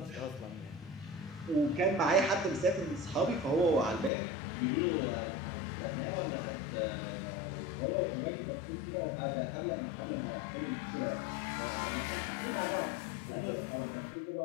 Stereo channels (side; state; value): right; drops out; at 4.1 s